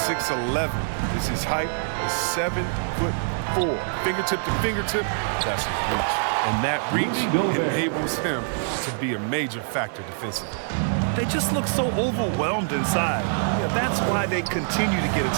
6'11" is his height, is 7'4". Fingertip to fingertip, that's his reach. And that reach enables him to be a major factor defensively. They just look so overwhelmed inside. Yeah, that's why they continue to get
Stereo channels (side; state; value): left; silent; digital silence